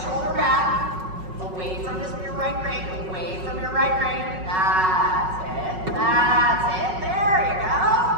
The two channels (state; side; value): late; left; 5.4 ms